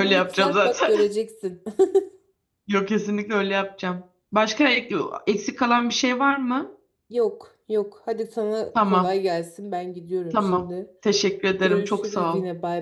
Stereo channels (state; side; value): identical; both; correlation 1.00